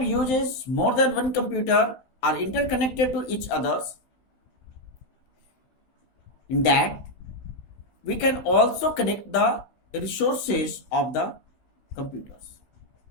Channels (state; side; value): late; right; 15 ms